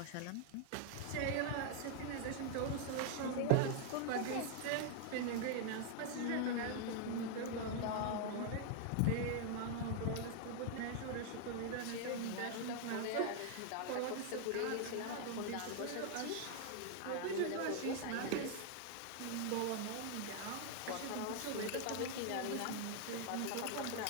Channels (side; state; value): both; different; correlation 0.00